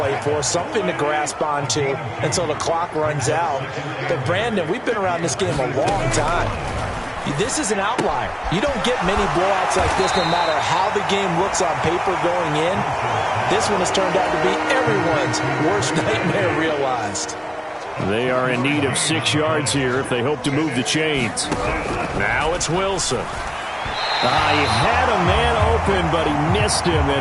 for, something to grasp onto until the clock runs out. But, Brandon, we've been around this game a long time. This is an outlier. You don't get many blowouts like this no matter how the game looks on paper going in. This one has turned out to be everyone's worst nightmare realized. They are in need of 6 yards here if they hope to move the chains. Now it's Wilson. He had a man open, but he missed him,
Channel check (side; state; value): both; identical; correlation 1.00